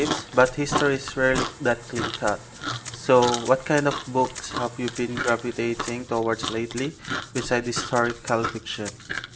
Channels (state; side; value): identical; both; correlation 1.00